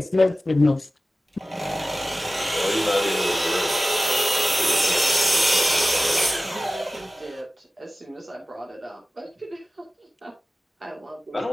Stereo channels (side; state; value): both; normal; correlation 0.96